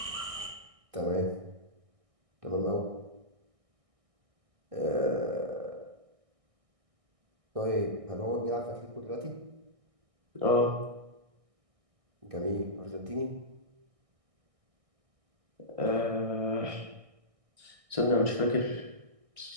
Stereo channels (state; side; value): late; left; 1.6 ms